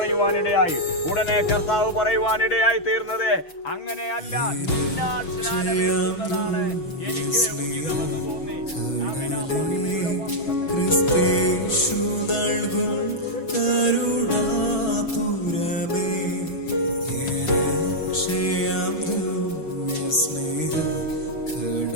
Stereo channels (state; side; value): late; right; 6.1 ms